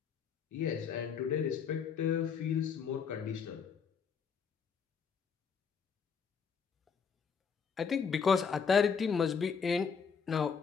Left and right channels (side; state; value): right; quieter; 6.3 dB